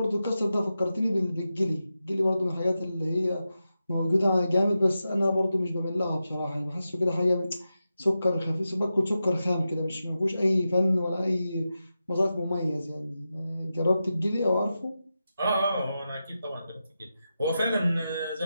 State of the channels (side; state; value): both; inverted; correlation -0.90